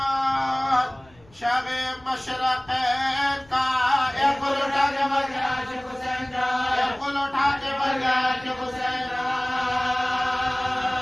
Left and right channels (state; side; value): noise; left; rumble, 28 dB below the sound